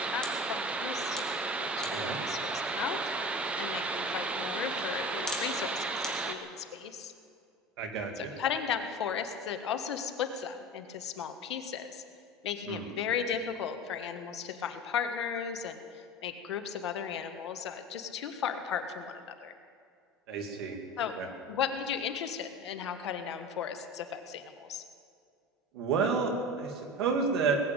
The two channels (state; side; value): normal; both; correlation 0.33